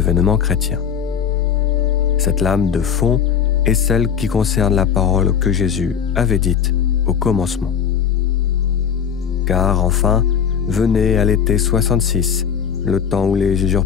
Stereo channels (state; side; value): quieter; right; 7.8 dB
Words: chrétien. Cette lame de fond est celle qui concerne la parole que Jésus avait dite au commencement. Car enfin, venait à l'été 66, le temps où les